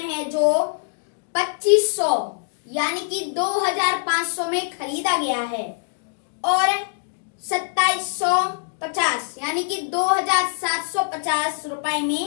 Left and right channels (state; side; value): silent; right; digital silence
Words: है जो 2500 यानी कि 2500 में खरीदा गया है और 2750 यानी कि 2750 रुपए